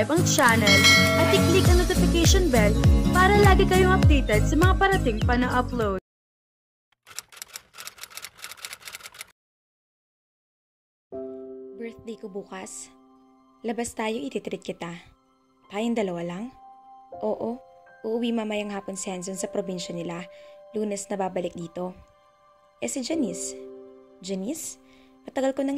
ang channel, at i-click ang notification bell para lagi kayong updated sa mga parating pa na upload. Birthday ko bukas. Labas tayo, ititreat kita. Tayong dalawa lang? Oo, uuwi mamayang hapon si Hanson sa probinsya nila. Lunes na babalik dito. Si Janice? Janice? Matagal ko nang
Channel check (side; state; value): both; identical; correlation 1.00